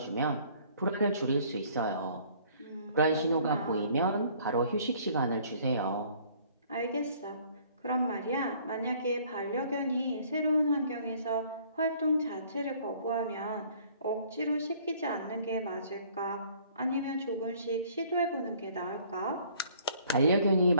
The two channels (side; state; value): both; inverted; correlation -0.57